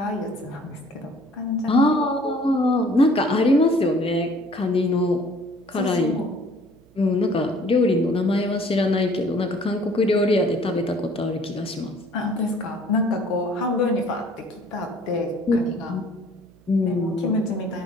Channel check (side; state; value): right; noise; hum, 28 dB below the sound